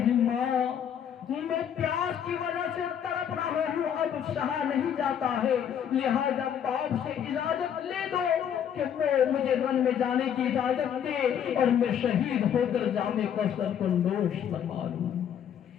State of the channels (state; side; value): quieter; right; 8.8 dB